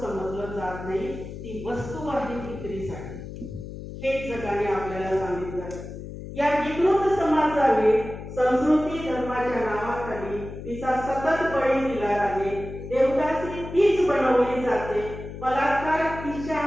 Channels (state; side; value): noise; left; hum, 11 dB below the sound